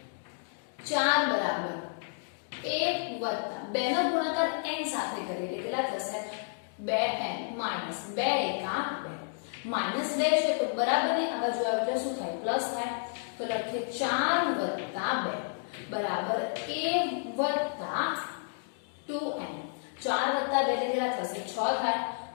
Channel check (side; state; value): right; silent; digital silence